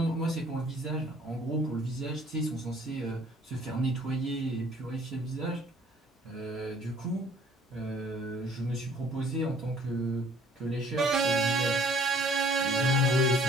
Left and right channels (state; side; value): normal; both; correlation 0.56